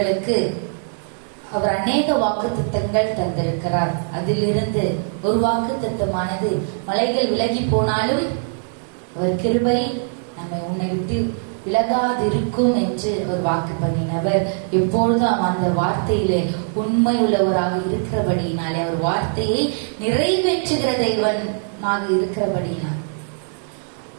அவர் அநேக வாக்குத்தத்தங்கள் தந்திருக்கிறார். அதிலிருந்து ஒரு வாக்குத்தத்தமானது மலைகள் விலகி போனாலும் அவர் கிருபை நம்மை உன்னை விட்டு விலகாதிருக்கும் என்று ஒரு வாக்கு பண்ணினவர். எப்பொழுதும் அந்த வார்த்தையிலே உண்மை உள்ளவராக இருக்கிறபடியினாலே அவர் வார்த்தையை நிறைவேற்றுகிற தெய்வனாக இருக்கிறபடியினால்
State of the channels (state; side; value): silent; left; digital silence